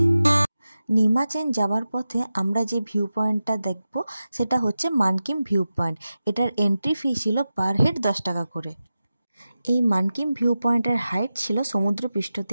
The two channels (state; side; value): inverted; both; correlation -0.93